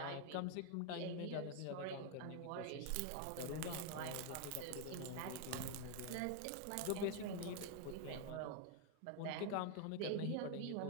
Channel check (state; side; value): different; both; correlation 0.00